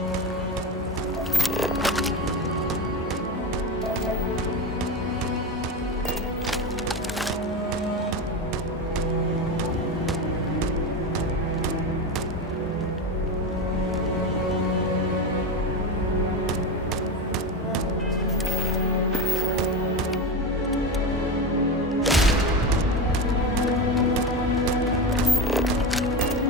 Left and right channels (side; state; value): both; normal; correlation 0.19